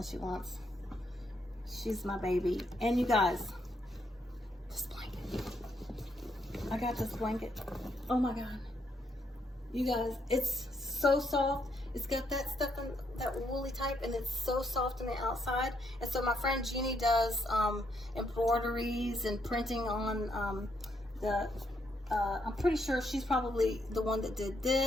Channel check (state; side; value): normal; both; correlation 0.75